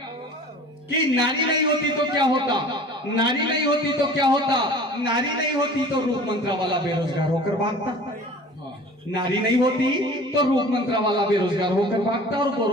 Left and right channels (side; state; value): both; normal; correlation 0.44